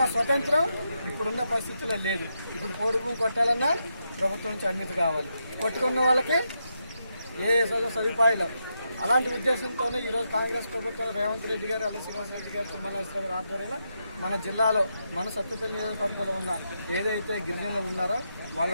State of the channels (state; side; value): inverted; both; correlation -0.83